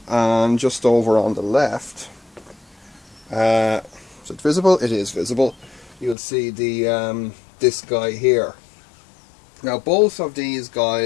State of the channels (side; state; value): right; drops out; at 6.2 s